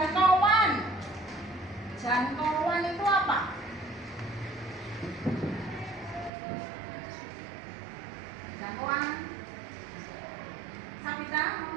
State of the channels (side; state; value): left; drops out; at 6.3 s